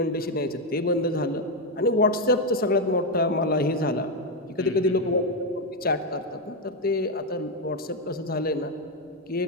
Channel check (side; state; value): both; normal; correlation 0.06